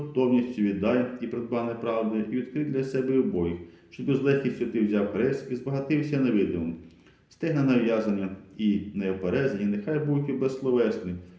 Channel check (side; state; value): both; identical; correlation 1.00